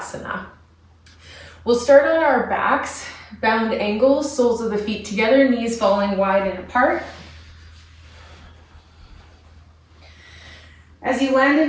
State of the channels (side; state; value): both; identical; correlation 1.00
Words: We'll start on our backs, bound ankles, soles of the feet together, knees falling wide and apart. As you land